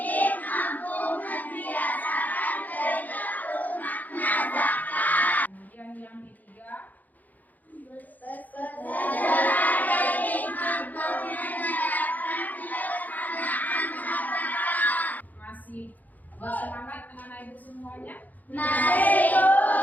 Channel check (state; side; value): late; right; 0.082 ms